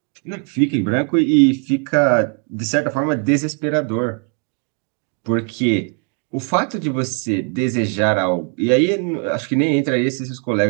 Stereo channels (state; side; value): quieter; left; 39.2 dB